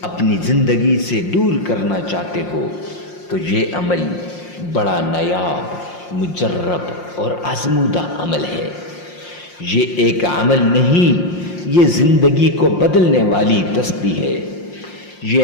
اپنی زندگی سے دور کرنا چاہتے ہو، تو یہ عمل بڑا نایاب، مجرب اور آزمودہ عمل ہے۔ یہ ایک عمل نہیں، یہ زندگی کو بدلنے والی تسبیح ہے۔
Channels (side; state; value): right; late; 5.6 ms